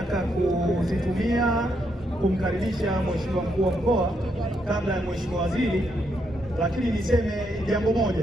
kuzitumia kumkaribisha Mheshimiwa Mkuu wa Mkoa kabla ya Mheshimiwa Waziri, lakini niseme jambo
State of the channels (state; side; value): normal; both; correlation 0.78